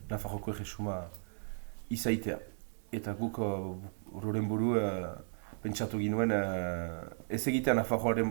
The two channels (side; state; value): left; silent; digital silence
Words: Nafarroko erresuma izaitea. Eta guk horren buru pentsatu ginuen ez egitea